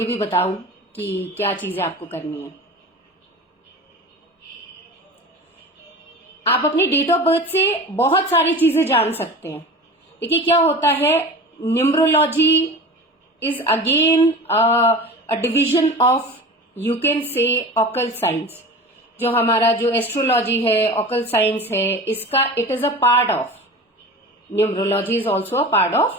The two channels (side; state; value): both; normal; correlation 0.34